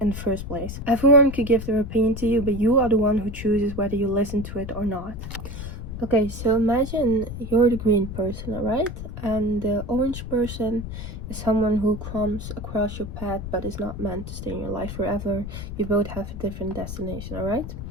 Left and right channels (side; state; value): left; noise; rumble, 8 dB below the sound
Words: the first place. Everyone could give their opinion to you, but you are the one who chooses whether you listen to it or not. Okay, so imagine you're the green person, alright? And the orange person is someone who comes across your path but is not meant to stay in your life forever. You both have a different destination, alright?